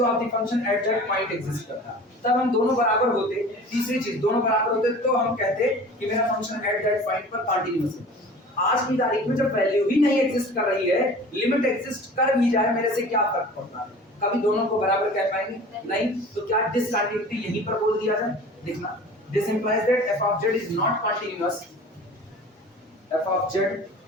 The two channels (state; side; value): normal; both; correlation 0.41